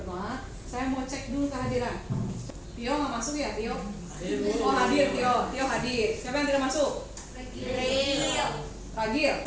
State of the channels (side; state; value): both; identical; correlation 1.00